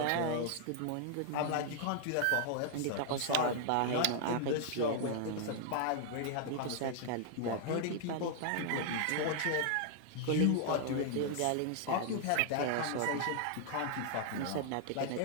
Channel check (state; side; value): different; both; correlation 0.00